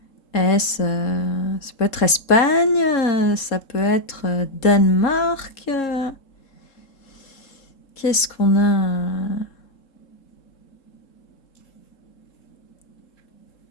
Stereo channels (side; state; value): right; late; 3.7 ms